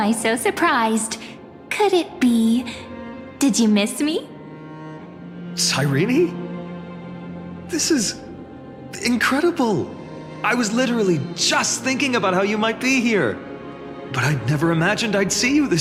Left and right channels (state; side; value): identical; both; correlation 1.00